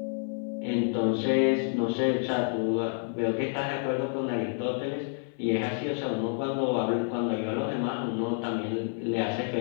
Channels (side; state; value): right; silent; 57 dB below the other